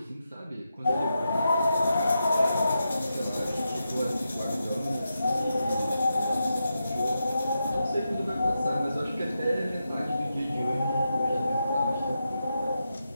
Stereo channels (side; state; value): both; inverted; correlation -0.87